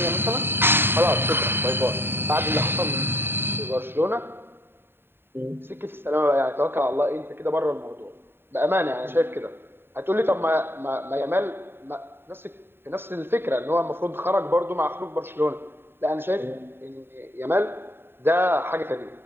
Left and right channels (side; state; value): left; late; 0.11 ms